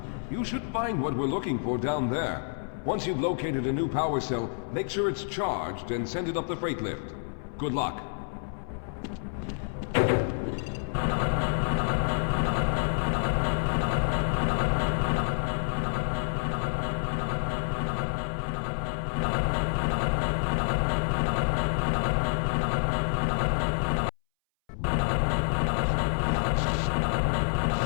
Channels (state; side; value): silent; right; 59 dB below the other